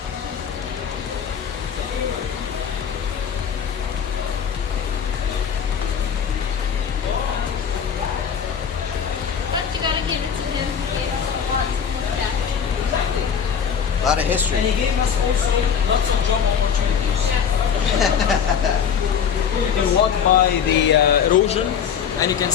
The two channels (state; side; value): quieter; right; 7.5 dB